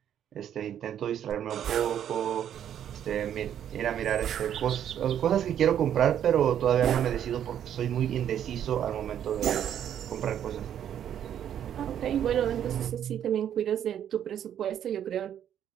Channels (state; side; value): quieter; left; 9.9 dB